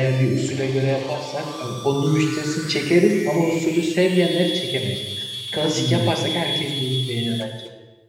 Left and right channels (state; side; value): identical; both; correlation 1.00